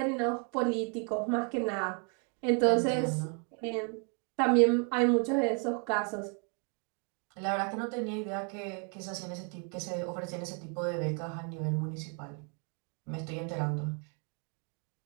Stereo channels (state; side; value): quieter; left; 39.0 dB